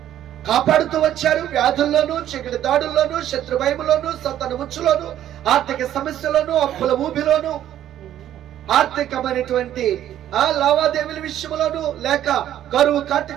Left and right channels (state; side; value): quieter; left; 11.7 dB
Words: కాపాడుతూ వచ్చారు. వ్యాధుల్లోనూ, చీకటి దాడుల్లోనూ, శత్రు భయములోనూ, సంతాన ఉచ్చులోనూ, ఆర్థిక సమస్యలోనూ, అప్పుల ఊబిలోనూ, ఆర్థికమైనటువంటి లావాదేవీల విషయంలోనూ, లేక కరువు